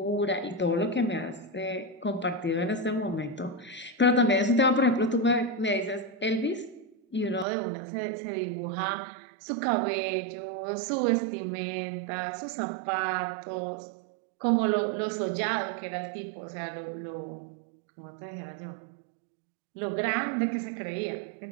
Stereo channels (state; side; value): drops out; left; at 7.5 s